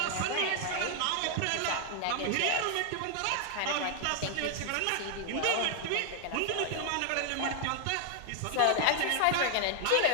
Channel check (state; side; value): different; both; correlation 0.00